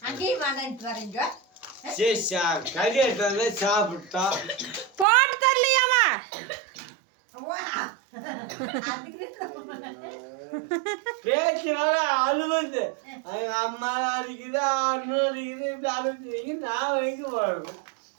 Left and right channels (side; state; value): left; drops out; at 5.1 s